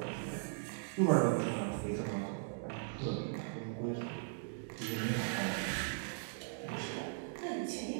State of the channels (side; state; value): left; silent; digital silence